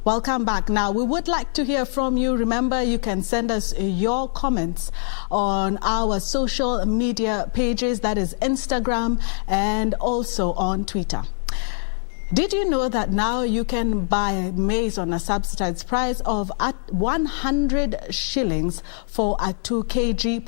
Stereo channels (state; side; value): silent; right; digital silence